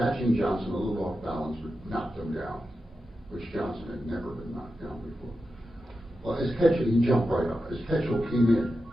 Johnson a little off balance, but knocked him down, which Johnson had never been knocked down before. Well, as Ketchel, he jumped right up. As Ketchel came in,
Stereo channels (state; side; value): normal; both; correlation 0.90